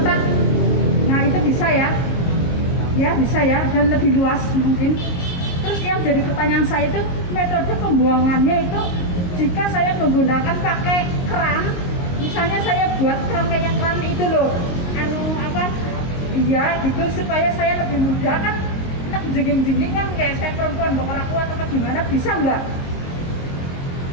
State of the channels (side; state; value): right; late; 23 ms